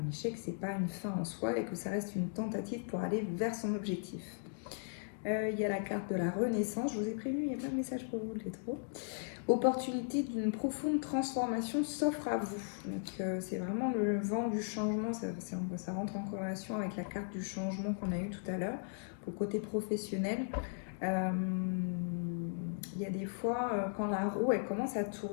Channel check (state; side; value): silent; right; digital silence